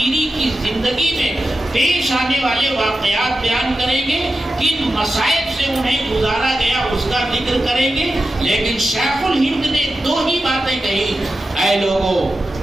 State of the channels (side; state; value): both; normal; correlation 0.92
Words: کی زندگی میں پیش آنے والے واقعات بیان کریں گے، کن مصائب سے انہیں گزارا گیا اس کا ذکر کریں گے. لیکن شیخ الہند نے 2 ہی باتیں کہی: اے لوگوں،